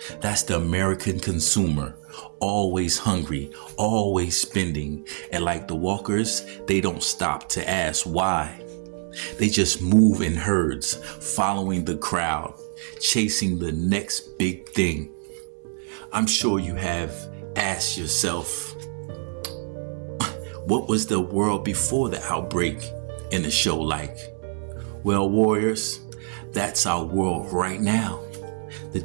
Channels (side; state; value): left; silent; digital silence